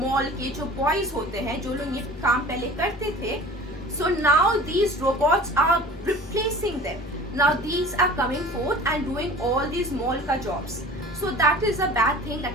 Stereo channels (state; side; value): normal; both; correlation 0.42